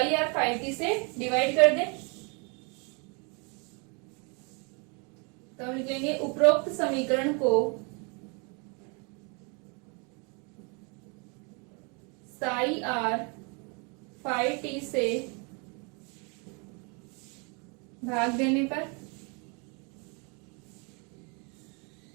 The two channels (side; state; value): left; quieter; 33.6 dB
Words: आर फाई टी से डिवाइड कर दें। तो हम लिखेंगे उपरोक्त समीकरण को साई आर फाई टी से भाग देने पर